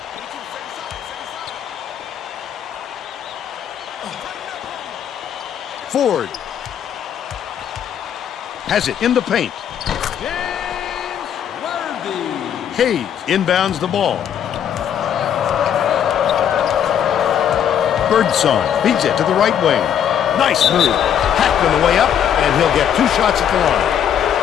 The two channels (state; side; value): quieter; right; 9.2 dB